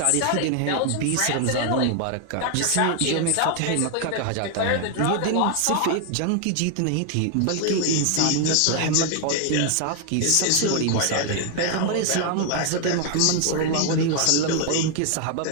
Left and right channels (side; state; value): both; different; correlation 0.00